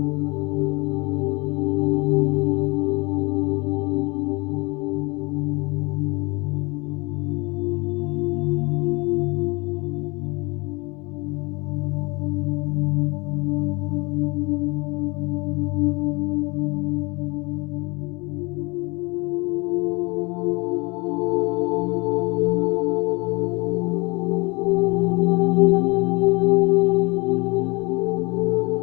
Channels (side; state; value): right; quieter; 26.8 dB